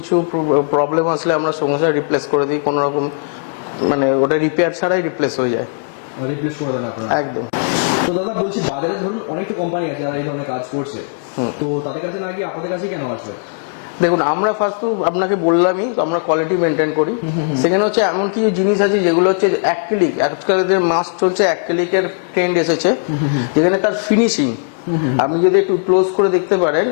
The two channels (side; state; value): right; silent; digital silence